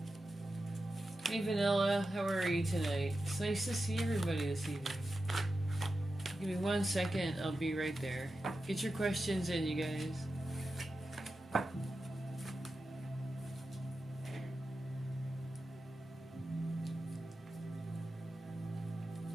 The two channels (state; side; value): normal; both; correlation 0.91